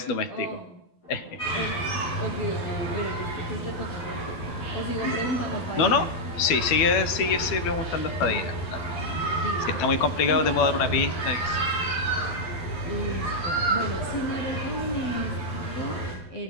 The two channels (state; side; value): late; right; 12 ms